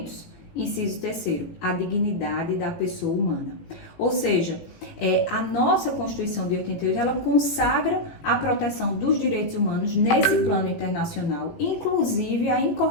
inciso 3º, a dignidade da pessoa humana. Ou seja, a nossa Constituição de 88, ela consagra a proteção dos direitos humanos nesse plano internacional, inclusive a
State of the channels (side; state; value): right; late; 18 ms